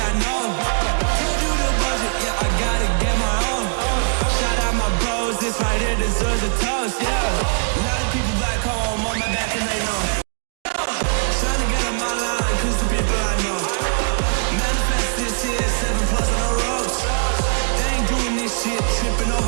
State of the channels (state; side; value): silent; left; digital silence